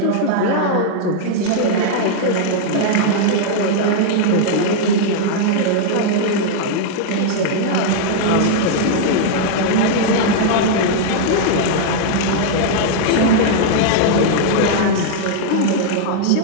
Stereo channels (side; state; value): both; different; correlation -0.01